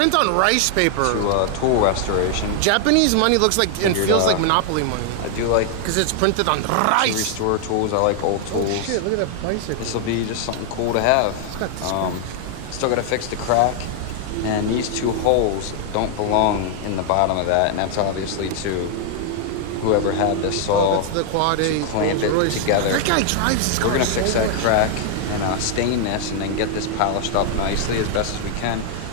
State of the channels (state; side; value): different; both; correlation 0.00